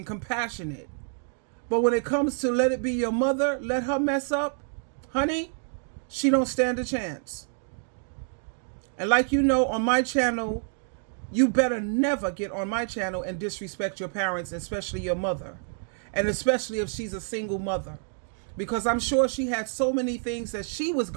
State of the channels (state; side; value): silent; left; 59 dB below the other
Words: compassionate. But when it comes to let it be your mother, let her mess up, honey, she don't stand a chance. And like you know, on my channel, you better never get on my channel and disrespect your parents, especially your mother. And especially if she's a single mother. Because I'm sure she had so many things that she was